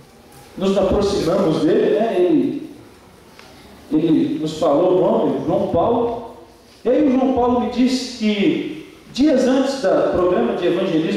nos aproximamos dele, né? Ele nos falou o nome, João Paulo. E aí o João Paulo me disse que dias antes do programa de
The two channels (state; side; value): identical; both; correlation 1.00